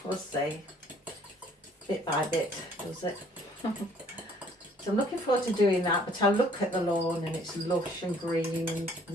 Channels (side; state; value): both; normal; correlation 0.59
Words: we'll see. Bit by bit, does it? So I'm looking forward to doing that, but I look at the lawn and it's lush and green and